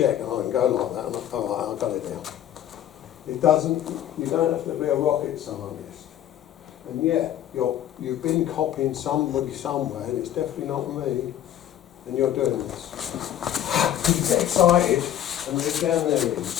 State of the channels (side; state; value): right; quieter; 11.3 dB